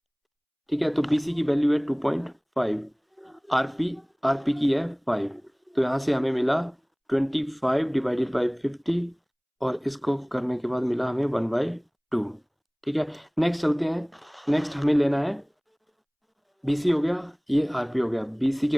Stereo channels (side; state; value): both; identical; correlation 1.00